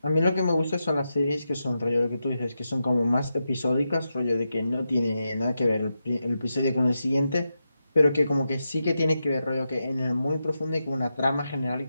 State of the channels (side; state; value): both; inverted; correlation -0.88